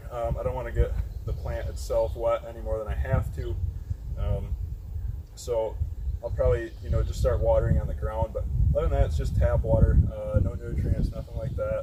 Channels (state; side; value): identical; both; correlation 1.00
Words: I don't want to get the plant itself wet any more than I have to. So I'll probably just start watering on the ground. But other than that, it's just tap water, no nutrients, nothing like that.